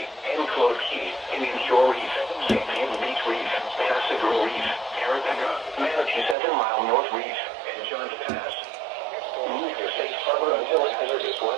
Reef, Carapega, Manatee 7-mile North Reef, and Johns Pass. Move to safe harbor until hazardous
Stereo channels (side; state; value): left; drops out; at 6.4 s